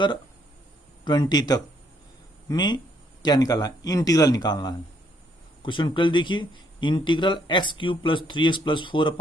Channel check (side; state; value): both; normal; correlation 0.69